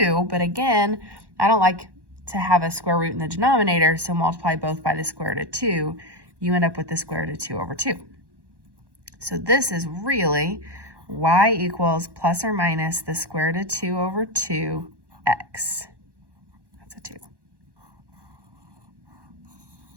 But again, I don't like to have a square root in the denominator, so multiply both by the square root of 2. You end up with the square root of 2 over 2. So this is really y equals plus or minus the square root of 2 over 2x. That's a 2.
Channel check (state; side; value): late; left; 1.1 ms